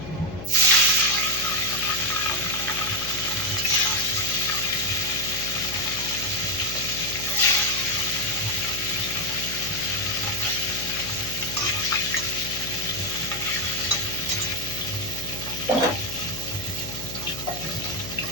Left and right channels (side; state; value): left; noise; hum, 10 dB below the sound